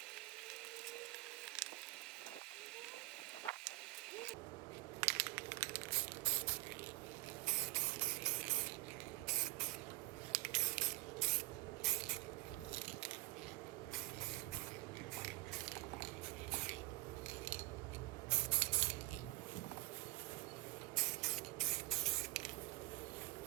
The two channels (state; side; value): quieter; left; 22.7 dB